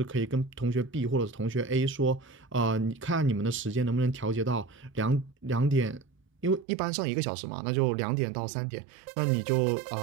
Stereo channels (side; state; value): left; drops out; at 6.7 s